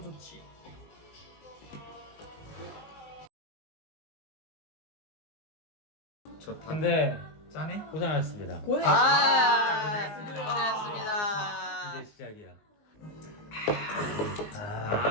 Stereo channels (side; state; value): right; late; 19 ms